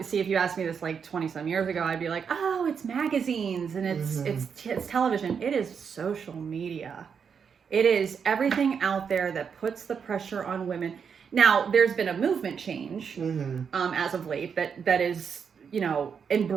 see, if you asked me this like 20 some years ago, I'd be like, oh, it's magazines and it's television. It is social media. It is everything out there that puts the pressure on women. Now there's been a movement change, as of late that is,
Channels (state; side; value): quieter; left; 6.7 dB